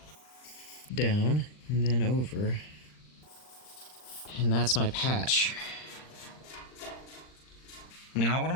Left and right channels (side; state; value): right; late; 39 ms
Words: down, and then over, and that's my patch. Now what